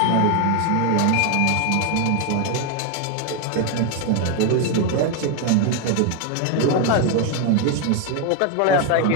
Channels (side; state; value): both; different; correlation 0.01